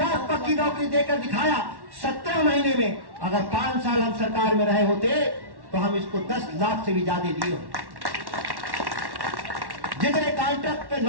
पक्की नौकरी देकर दिखाया 17 महीने में। अगर 5 साल हम सरकार में रहे होते तो हम इसको 10 लाख से भी ज्यादा दिए होते। जितने कॉन्ट्रैक्ट पे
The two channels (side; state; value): left; late; 1.1 ms